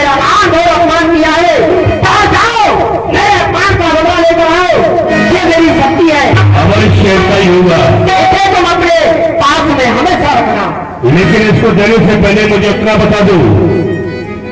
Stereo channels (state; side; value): identical; both; correlation 1.00